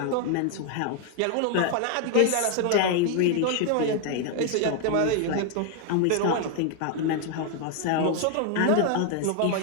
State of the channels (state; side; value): different; both; correlation 0.00